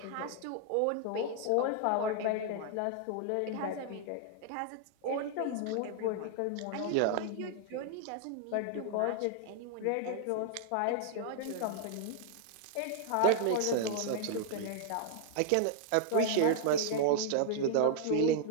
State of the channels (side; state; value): both; different; correlation -0.01